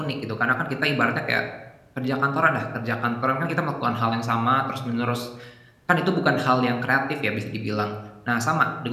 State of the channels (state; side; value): identical; both; correlation 1.00